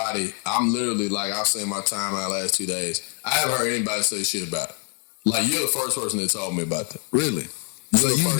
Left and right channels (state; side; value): quieter; right; 36.5 dB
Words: literally, like, I've seen my timeline last 2 days. I haven't heard anybody say shit about it. Like, you're the first person that told me about that. Really? So you